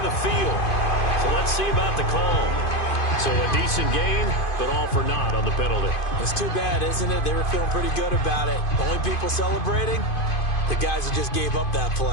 the field. So let's see about the call. So a decent gain, but all for naught on the penalty. It's too bad, isn't it? They were feeling pretty good about it. The only people celebrating, the guys who just gave up that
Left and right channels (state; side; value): late; right; 2.5 ms